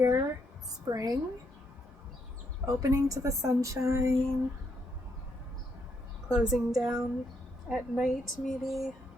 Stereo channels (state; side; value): normal; both; correlation 0.76